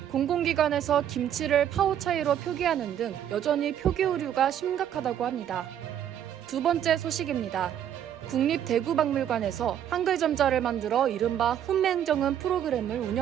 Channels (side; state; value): left; quieter; 10.0 dB